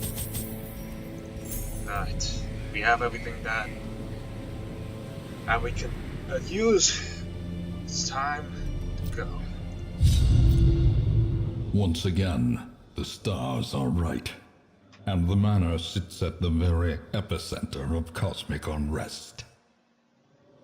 Right, we have everything that we can use. It's time to go. Once again, the stars are right. And the manor sits at the very epicenter of cosmic unrest.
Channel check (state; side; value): identical; both; correlation 1.00